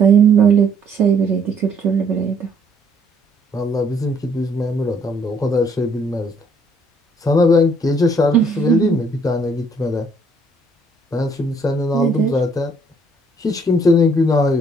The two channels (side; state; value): both; normal; correlation 0.65